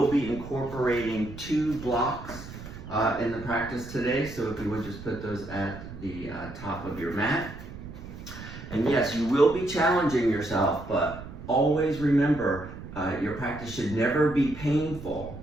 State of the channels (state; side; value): noise; right; rumble, 12 dB below the sound